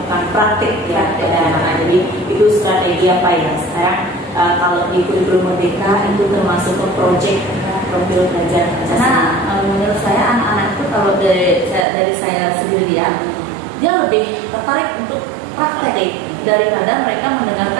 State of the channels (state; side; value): drops out; left; at 11.9 s